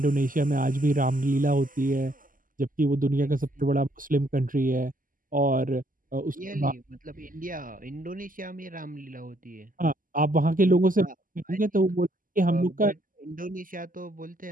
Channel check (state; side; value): late; left; 0.40 ms